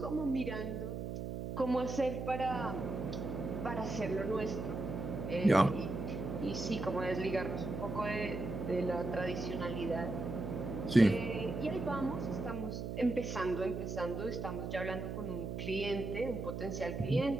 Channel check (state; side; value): noise; right; hum, 5 dB below the sound